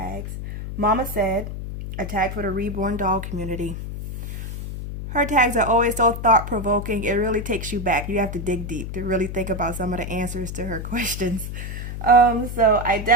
Mama said a tag for the reborn doll community. Her tags are always so thought-provoking. It really takes you back. You have to dig deep to really think about some of the answers to her questions. So I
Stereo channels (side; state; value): left; noise; hum, 7 dB below the sound